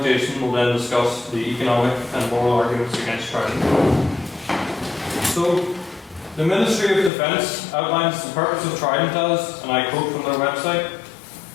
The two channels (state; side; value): drops out; right; at 7.1 s